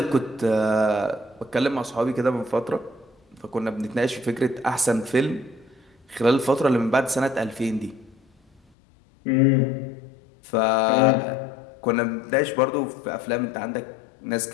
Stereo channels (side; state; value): right; drops out; at 8.6 s